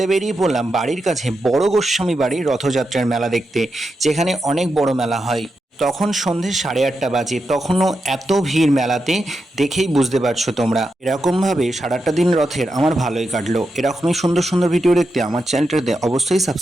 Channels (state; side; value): normal; both; correlation 0.87